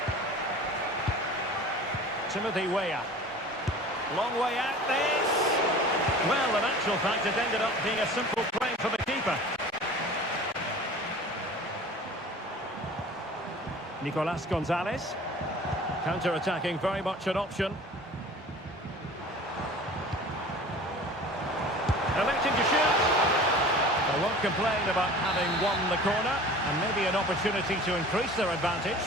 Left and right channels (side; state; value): both; normal; correlation 0.42